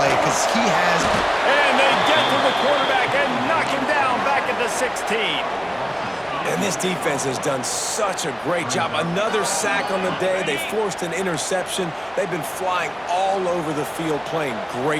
because he has... And they get to the quarterback and knock him down back at the 16. And this defense has done such a great job. Another sack on the day. They forced an interception. They've been flying all over the field playing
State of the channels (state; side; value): identical; both; correlation 1.00